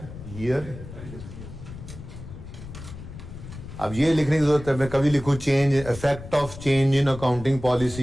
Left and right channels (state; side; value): noise; left; rumble, 13 dB below the sound